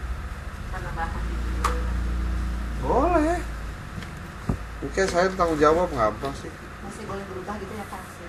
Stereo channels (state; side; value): identical; both; correlation 1.00